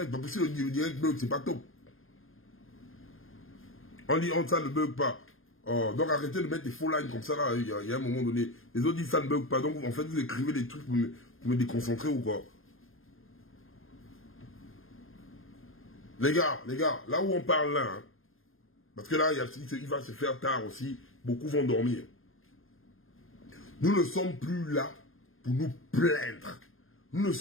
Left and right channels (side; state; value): right; late; 0.60 ms